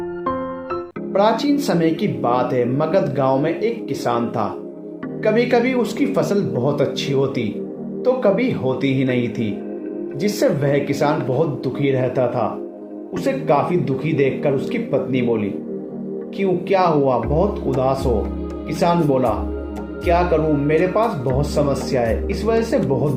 प्राचीन समय की बात है। मगध गांव में एक किसान था। कभी कभी उसकी फसल बहुत अच्छी होती तो कभी होती ही नहीं थी, जिससे वह किसान बहुत दुखी रहता था। उसे काफी दुखी देखकर उसकी पत्नी बोली, क्यों, क्या हुआ, बहुत उदास हो? किसान बोला, क्या करूं, मेरे पास बहुत समस्या है, इस वजह से बहुत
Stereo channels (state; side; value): identical; both; correlation 1.00